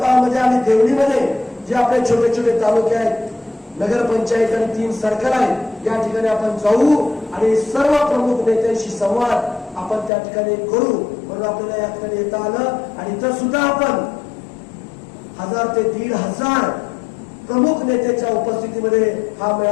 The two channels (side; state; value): right; drops out; at 10.1 s